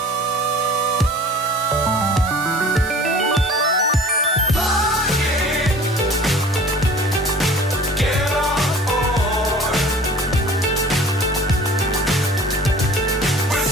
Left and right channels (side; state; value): both; normal; correlation 0.46